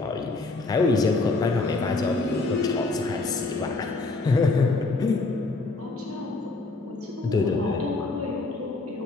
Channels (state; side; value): quieter; right; 3.5 dB